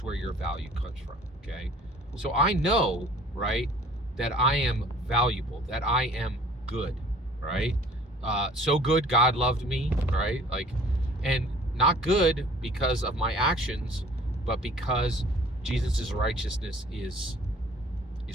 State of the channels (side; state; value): both; normal; correlation 0.51